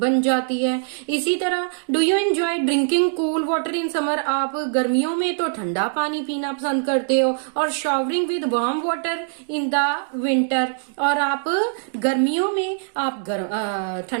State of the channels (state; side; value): silent; left; digital silence